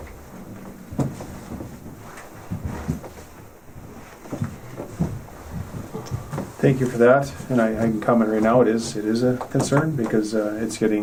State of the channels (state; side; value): identical; both; correlation 1.00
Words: Thank you for that, and I can comment right now, it is a concern because it's